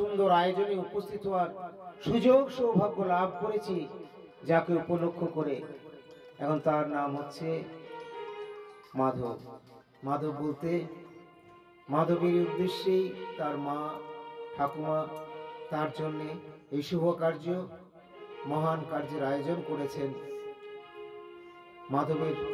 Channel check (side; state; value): both; identical; correlation 1.00